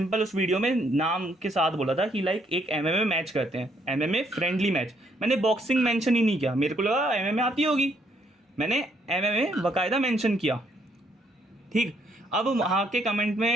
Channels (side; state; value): both; normal; correlation 0.70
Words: उस वीडियो में नाम के साथ बोला था कि लाइक एक एमएमए मैच करते हैं, एमएमए फ्रेंडली मैच। मैंने बॉक्सिंग मेंशन ही नहीं किया, मेरे को लगा एमएमए आती होगी, मैंने एमएमए बाकायदा मेंशन किया। ठीक, अब वहाँ के कमेंट